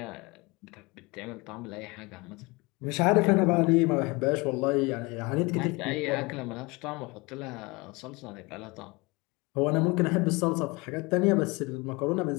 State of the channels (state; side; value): quieter; right; 25.8 dB